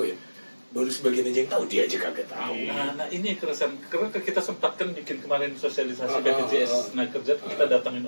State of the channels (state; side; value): inverted; both; correlation -1.00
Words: ya, baru sebagian aja yang tahu, dia aja kagak tahu. Nah, ini keresahan karena kita sempatkan bikin kemarin sosialisasi Ah, BPJS nah kerja kita